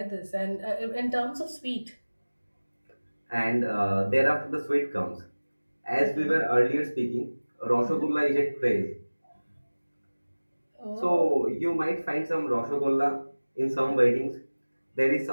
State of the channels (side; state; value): both; inverted; correlation -1.00